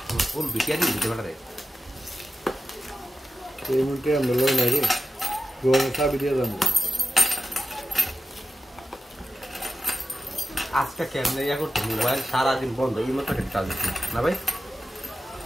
ফুল বিটিয়ারি দিতে পারে। এই মুহূর্তে আমরা লই নাই রে, গোয়া চাবি দিয়ে যাবো। আজকে কেমনে ইয়া করতে মোবাইল সারাদিন বন্ধ, এই মতো একটা কাজ না ভাই।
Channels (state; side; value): normal; both; correlation 0.92